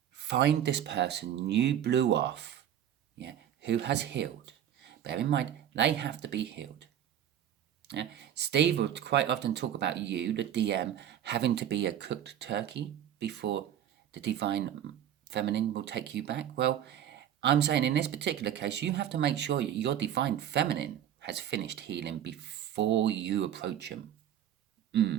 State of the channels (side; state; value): left; quieter; 10.4 dB